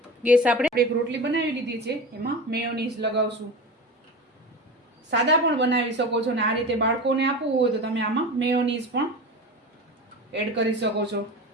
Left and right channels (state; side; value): normal; both; correlation 0.29